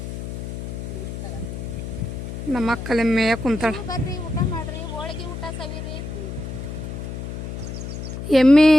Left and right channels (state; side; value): noise; left; hum, 7 dB below the sound